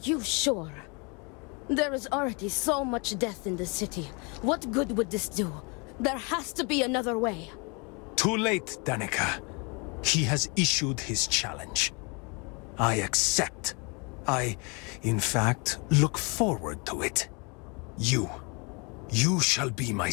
sure? There is already so much death in the city. What good would this do? There has to be another way. Too late, Danica. He has issued his challenge. I accept. In fact, look forward to it. You shall be my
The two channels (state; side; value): quieter; right; 31.7 dB